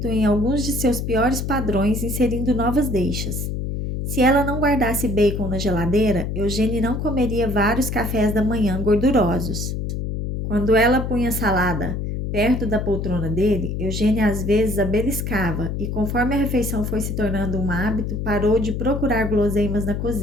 em alguns de seus piores padrões inserindo novas deixas. Se ela não guardasse bacon na geladeira, Eugênia não comeria vários cafés da manhã gordurosos. Quando ela punha salada perto da poltrona dele, Eugênia às vezes a beliscava e, conforme a refeição foi se tornando um hábito, parou de procurar guloseimas na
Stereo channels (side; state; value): left; noise; hum, 3 dB below the sound